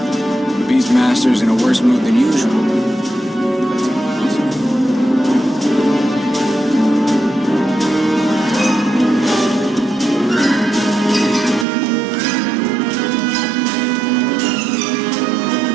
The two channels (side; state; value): left; drops out; at 11.7 s